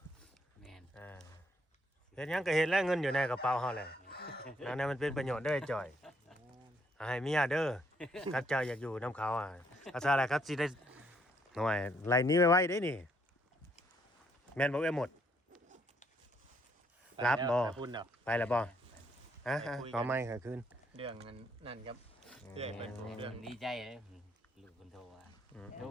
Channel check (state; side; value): normal; both; correlation 0.70